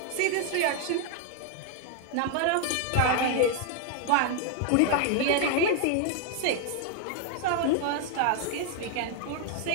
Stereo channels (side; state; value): both; different; correlation 0.00